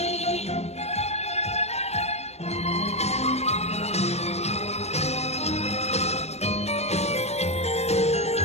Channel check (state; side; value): late; right; 0.31 ms